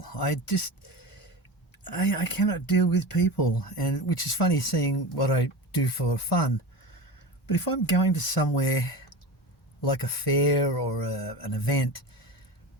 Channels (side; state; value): both; normal; correlation 0.28